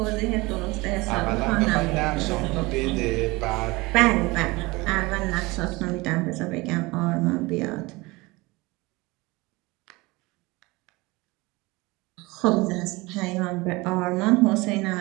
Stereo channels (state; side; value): quieter; left; 23.1 dB